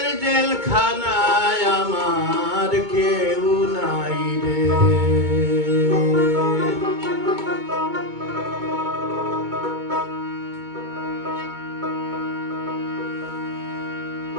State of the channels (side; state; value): left; late; 2.2 ms